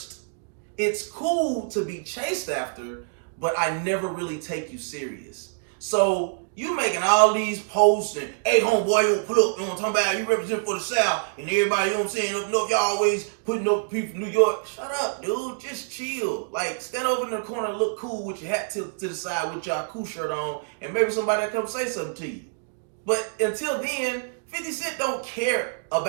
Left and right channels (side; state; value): left; silent; digital silence